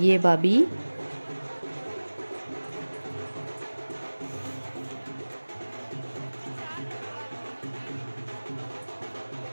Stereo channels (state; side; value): inverted; both; correlation -1.00